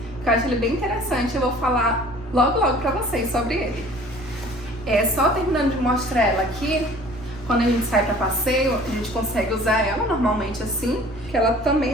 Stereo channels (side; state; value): right; noise; rumble, 23 dB below the sound